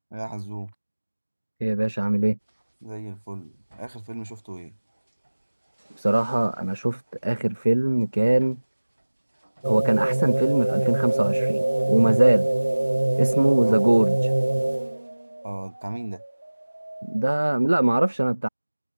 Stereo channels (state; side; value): inverted; both; correlation -1.00